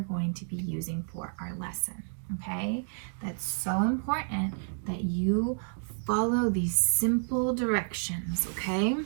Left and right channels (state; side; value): silent; left; digital silence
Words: going to be using for our lesson, okay? That's so important that you follow these simple directions, okay?